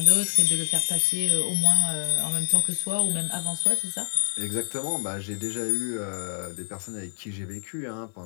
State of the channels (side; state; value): right; silent; 59 dB below the other